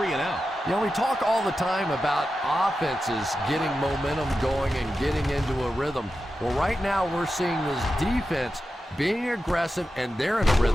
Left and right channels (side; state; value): both; normal; correlation 0.91